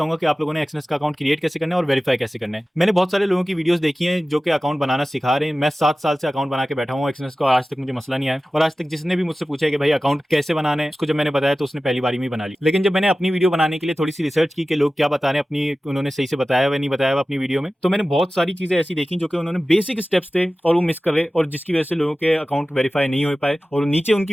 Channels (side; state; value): both; normal; correlation 0.96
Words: कि आप लोगों ने एक्सनेस का अकाउंट क्रिएट कैसे करना है और वेरीफाई कैसे करना है। मैंने बहुत सारे लोगों की वीडियोस देखी हैं जो कि अकाउंट बनाना सिखा रहे हैं। मैं 7 साल से अकाउंट बना के बैठा हूँ एक्सनेस का, आज तक मुझे मसला नहीं आया। और आज तक जिसने भी मुझसे पूछा है कि भाई अकाउंट कैसे बनाना है, उसको जब मैंने बताया तो उसने पहली बारी में बना ली। लेकिन जब मैंने अपनी वीडियो बनाने के लिए थोड़ी सी रिसर्च की कि लोग क्या बता रहे हैं, अपनी उन्होंने सही से बताया हुआ नहीं बताया हुआ अपनी वीडियो में, तो मैंने बहुत सारी चीजें ऐसी देखी जो कि उन्होंने बेसिक स्टेप्स थे और वो मिस कर रहे, और जिसकी वजह से लोगों के अकाउंट वेरीफाई नहीं हो पाए। और नीचे उनकी